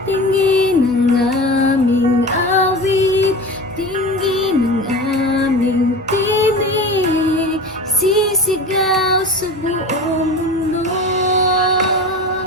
Tingin ang aming awit, tingin ang aming tinig, sisigaw sa buong mundo.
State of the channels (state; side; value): normal; both; correlation 0.32